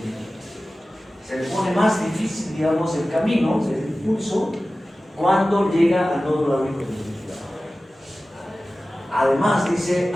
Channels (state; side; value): normal; both; correlation 0.96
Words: Se le pone más difícil, digamos, el camino, el impulso, cuando llega al nódulo auriculoventricular. Además, dice,